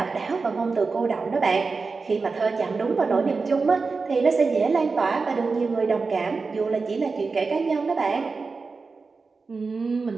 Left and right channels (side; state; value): left; quieter; 4.4 dB